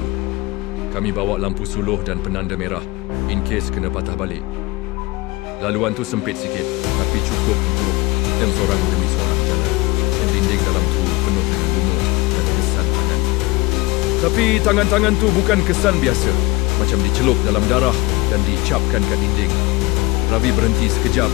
Kami bawa lampu suluh dan penanda merah in case kena patah balik. Laluan tu sempit sikit tapi cukup untuk seorang demi seorang jalan. Dan dinding dalam tu penuh dengan lumut dan kesan tangan. Tapi tangan-tangan tu bukan kesan biasa. Macam dicelup dalam darah dan dicapkan kat dinding. Ravi berhenti sekejap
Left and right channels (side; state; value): right; quieter; 22.6 dB